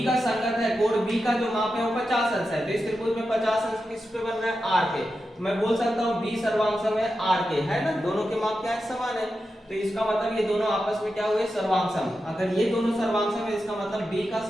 का संगत है, कोण B का जो माप है वो 50 अंश है, तो इस त्रिभुज में 50 अंश किस पे बन रहा है, R के। तो मैं बोल सकता हूँ B सर्वांगसम है R के, है ना, दोनों के माप क्या है, समान है। तो इसका मतलब ये दोनों आपस में क्या हुए, सर्वांगसम। अगर ये दोनों सर्वांगसम है इसका मतलब B का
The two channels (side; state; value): both; normal; correlation 0.90